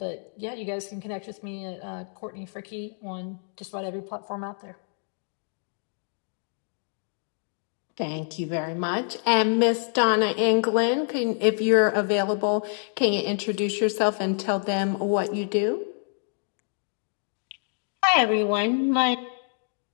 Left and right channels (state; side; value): silent; right; digital silence